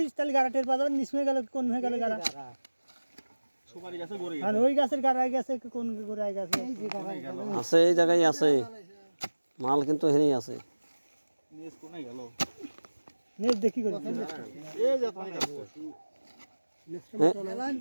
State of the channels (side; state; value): both; inverted; correlation -1.00